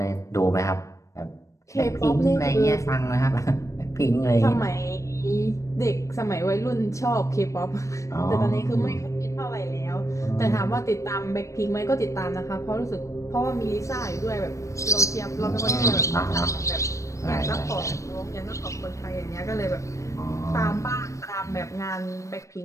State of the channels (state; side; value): late; right; 0.15 ms